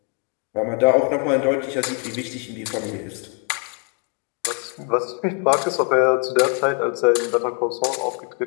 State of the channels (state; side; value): quieter; right; 35.7 dB